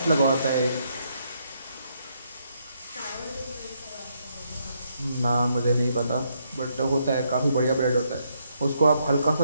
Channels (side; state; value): both; inverted; correlation -0.75